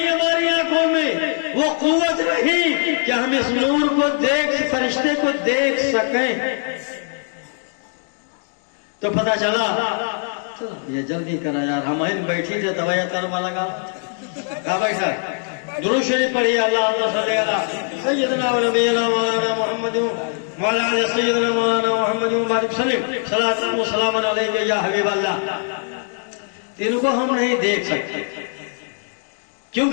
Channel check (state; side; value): silent; right; 57 dB below the other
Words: ہماری آنکھوں میں وہ قوت نہیں کہ ہم اس نور کو فرشتے کو دیکھ سکیں۔ تو پتہ چلا یہ جلدی کرا یار، ہم بیٹھی تھے دوایا ترما لگا کہاں بیٹھا؟ درود شریف پڑھیے، اللہم صلی علی سیدنا و نبینا مولانا محمد وعلی آل سیدنا مولانا محمد مبارک وسلم، صلاۃ و سلام علیک یا حبیب اللہ۔ ان کو ہم نہیں دیکھ سکتے